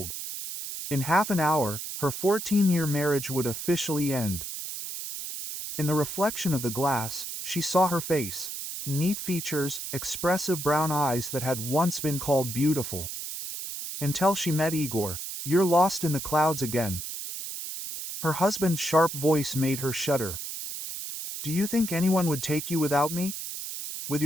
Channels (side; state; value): right; noise; hiss, 7 dB below the sound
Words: In half an hour, her 14-year marriage would officially end. In the reflection of the glass, she saw her face, neat features, expressive brown eyes that had once been called beautiful. Until she met Igor. "You're lost in the clouds again." Her husband's sharp voice made her shudder. "Do you think anyone would take you without me? With